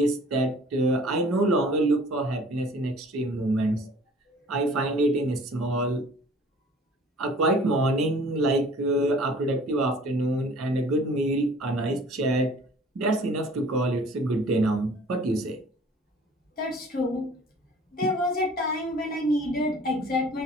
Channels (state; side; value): normal; both; correlation 0.50